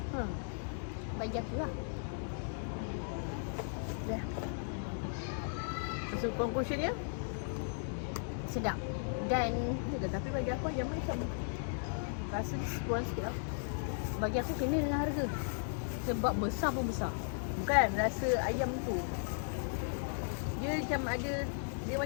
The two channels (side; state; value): right; silent; digital silence